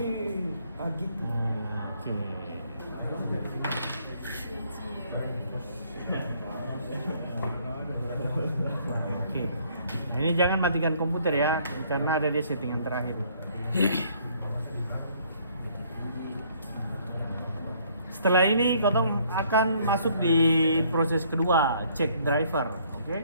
Oke. Nah, ini jangan matikan komputer ya, karena ada dia settingan terakhir. Setelah ini kotong akan masuk di proses kedua, cek driver, oke?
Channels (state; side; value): inverted; both; correlation -0.63